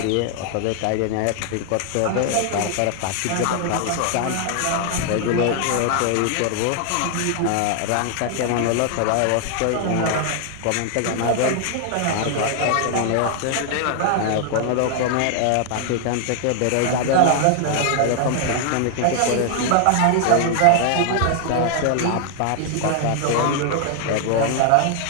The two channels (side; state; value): both; different; correlation 0.00